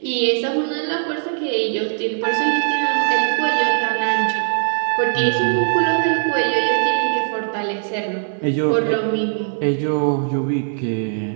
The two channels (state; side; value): silent; left; digital silence